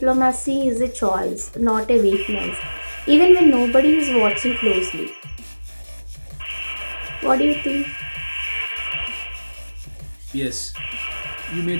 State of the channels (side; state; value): both; inverted; correlation -1.00